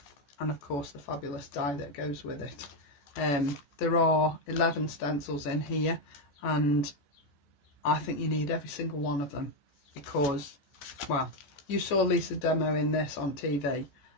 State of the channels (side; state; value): right; late; 14 ms